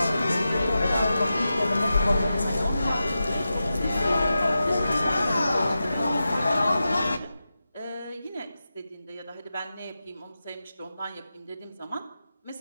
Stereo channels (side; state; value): both; inverted; correlation -0.92